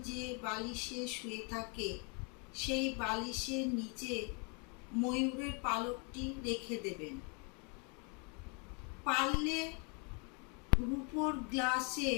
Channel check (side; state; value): right; quieter; 34.3 dB